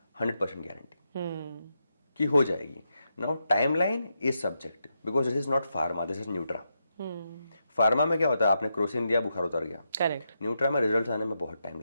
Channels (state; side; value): inverted; both; correlation -0.84